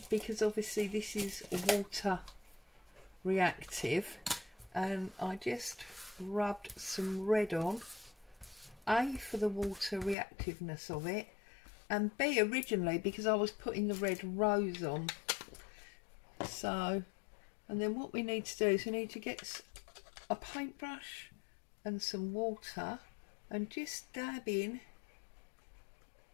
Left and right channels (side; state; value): right; drops out; at 10.2 s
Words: because obviously this is water reactive, and I just rubbed some red on, A, for the water reactiveness of it, and B, originally because I was putting the red rose on. So, and then what we need to do is we need to get a paintbrush and some water and just dab in